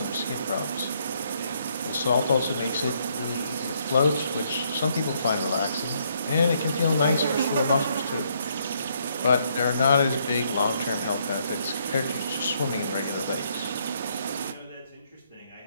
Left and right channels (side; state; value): both; inverted; correlation -0.71